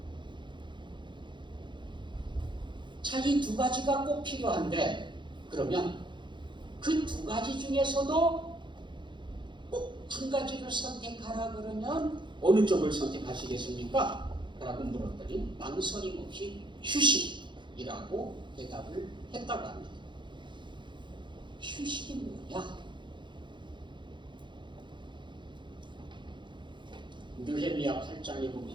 자, 이 두 가지가 꼭 필요한데 그러면 그 두 가지 중에서도 꼭 한 가지를 선택하라 그러면 어느 쪽을 선택하시겠습니까? 라고 물었더니 망설임 없이 휴식이라고 대답을 했다고 합니다. 휴식이 뭐냐? 느헤미야 8장에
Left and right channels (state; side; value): late; left; 0.23 ms